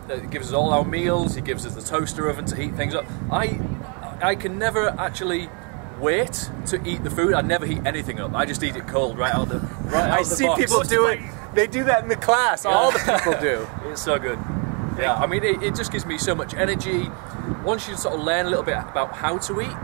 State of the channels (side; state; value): left; quieter; 36.9 dB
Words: all our meals. He gives us the toaster oven to heat things up. I can never actually wait to eat the food. I never heat anything up. I just eat it cold right out the box. I see people do it. They do that in the class. Yeah. All the people do. It's so good. Yeah, I mean, it just gives me so much energy. Once you sort of learn a little bit about how to eat,